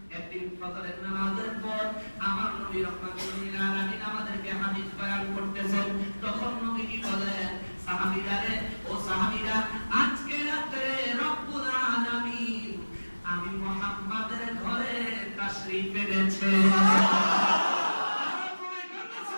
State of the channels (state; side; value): inverted; both; correlation -1.00